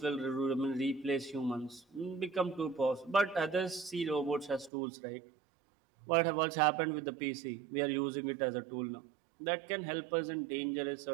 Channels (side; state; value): left; drops out; at 4.7 s